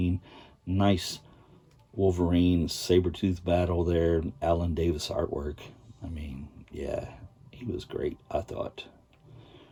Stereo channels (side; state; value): both; identical; correlation 1.00